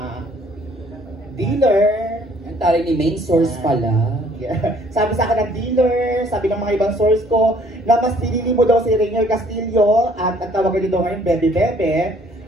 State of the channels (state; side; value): normal; both; correlation 0.60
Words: dealer, ang tari ni main source pala. Yeah. Sabi sa akin ng dealer, sabi ng mga ibang source ko, na mas pinili mo daw si Rainier Castillo at ang tawag nito ngayon, Bebe Bebe.